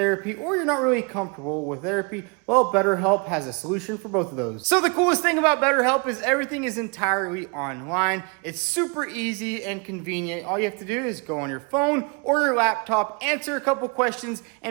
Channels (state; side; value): quieter; left; 32.4 dB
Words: or you're not really comfortable with therapy. Well, BetterHelp has a solution for both of those. So the coolest thing about BetterHelp is everything is entirely online. It's super easy and convenient. All you have to do is go on your phone or your laptop, answer a couple questions,